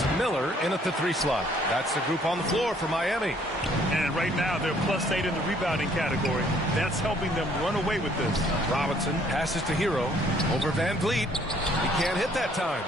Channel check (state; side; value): normal; both; correlation 0.62